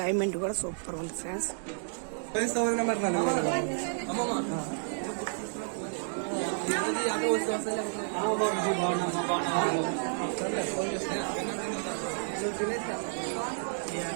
కూడా సూపర్ ఉంది ఫ్రెండ్స్. ఫ్రెండ్స్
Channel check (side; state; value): left; silent; digital silence